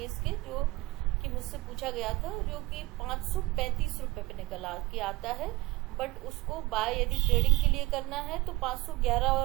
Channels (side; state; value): left; quieter; 20.2 dB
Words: इसके, जो कि मुझसे पूछा गया था, जो कि 535 रुपए पे निकल के आता है। बट उसको बाय यदि ट्रेडिंग के लिए करना है तो 511